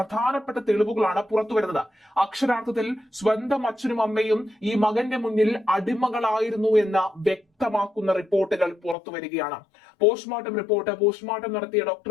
തെളിവുകളാണ് പുറത്തു വരുന്നത്. അക്ഷരാർത്ഥത്തിൽ സ്വന്തം അച്ഛനും അമ്മയും ഈ മകന്റെ മുന്നിൽ അടിമകളായിരുന്നു എന്ന വ്യക്തമാക്കുന്ന റിപ്പോർട്ടുകൾ പുറത്തു വരികയാണ്. പോസ്റ്റ്മോർട്ടം റിപ്പോർട്ട്, പോസ്റ്റ്മോർട്ടം നടത്തിയ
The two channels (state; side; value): drops out; right; at 9.0 s